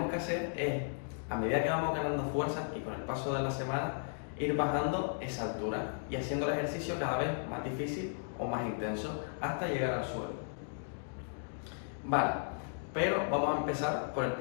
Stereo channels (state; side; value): silent; right; digital silence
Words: que hacer es, a medida que vamos ganando fuerza y con el paso de la semana, ir bajando esa altura y haciendo el ejercicio cada vez más difícil o más intenso hasta llegar al suelo. Vale. Pero vamos a empezar por el